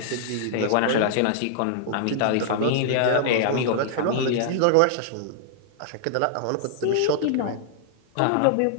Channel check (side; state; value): both; different; correlation -0.01